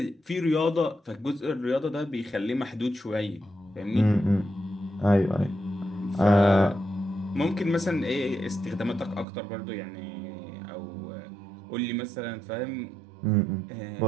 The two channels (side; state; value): left; drops out; at 9.2 s